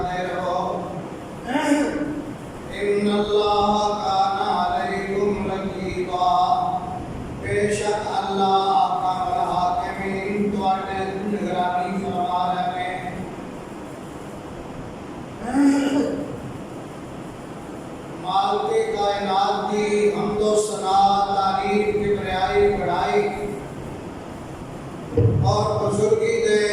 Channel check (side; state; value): both; identical; correlation 1.00